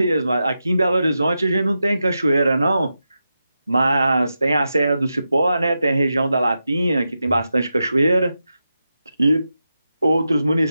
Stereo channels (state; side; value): inverted; both; correlation -0.89